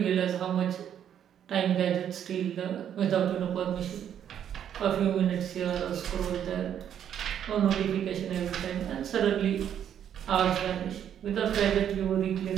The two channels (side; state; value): left; quieter; 9.5 dB